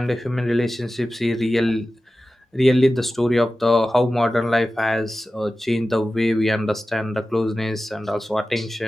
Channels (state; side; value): normal; both; correlation 0.95